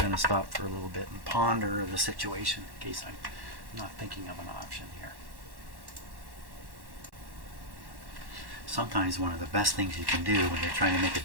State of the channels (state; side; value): late; left; 1.1 ms